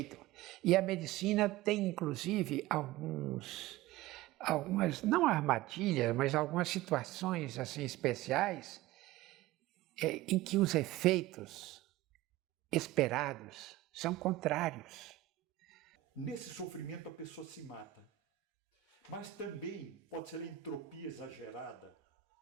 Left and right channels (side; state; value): left; quieter; 15.8 dB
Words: E a medicina tem, inclusive, algumas, não armadilhas, mas algumas situações assim especiais em que os efeitos esperados são contrários. Nesse sofrimento a pessoa se mata. Mas também pode ser a entropia exagerada